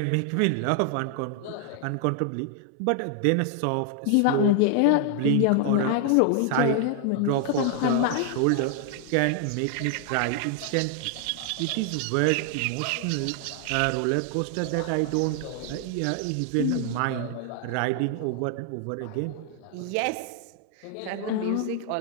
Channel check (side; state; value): both; different; correlation 0.00